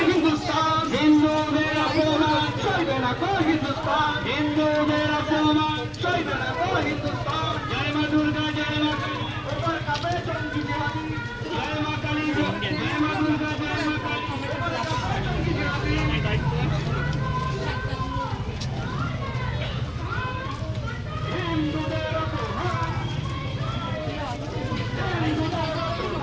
হিন্দুদের অপমান সইবে না কো হিন্দুস্তান। হিন্দুদের অপমান সইবে না কো হিন্দুস্তান। জয় মা দুর্গা, জয় মা কালী, ওপর কাঁপে জঙ্গি জিহাদি। জয় মা কালী, জয় মা দুর্গা, জয় মা কালী। হিন্দুদের অপমান। হিন্দুদের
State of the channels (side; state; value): both; identical; correlation 1.00